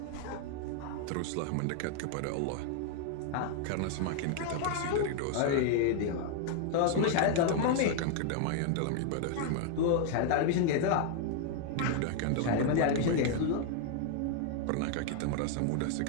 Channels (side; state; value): both; different; correlation 0.00